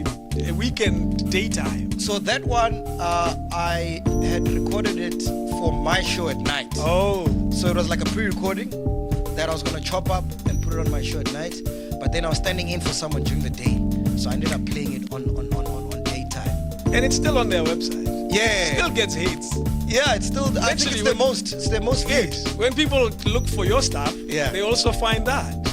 a weekend daytime. So that one, I had recorded it for my show at night. Oh. So it was like a pre-recording that I was going to chop up and put it on my show at night. But then I was standing in for someone during the day. So I ended up playing it on daytime. And it's still on their website. Yeah. Still gets hits. Yeah, it's still, I think it's the most viewed. Yes. When people look for your stuff, they also find that.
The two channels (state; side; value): identical; both; correlation 1.00